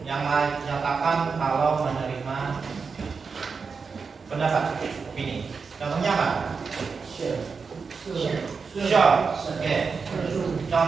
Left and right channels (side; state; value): left; quieter; 5.2 dB